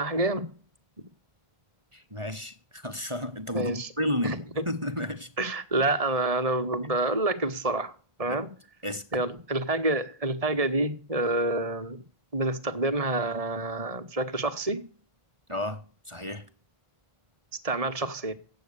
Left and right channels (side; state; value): left; late; 1.4 ms